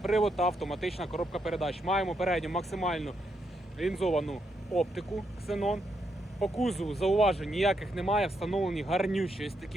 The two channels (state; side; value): normal; both; correlation 0.79